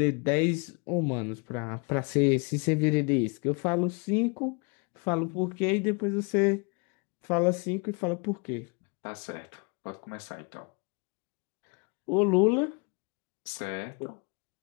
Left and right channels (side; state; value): right; quieter; 33.4 dB